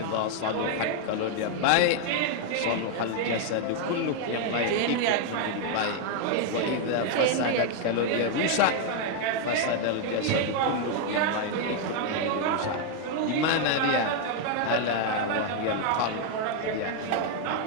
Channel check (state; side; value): different; both; correlation 0.00